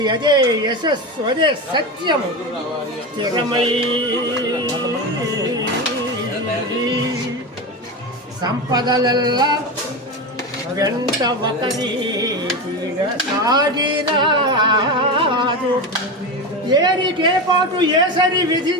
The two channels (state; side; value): normal; both; correlation 0.20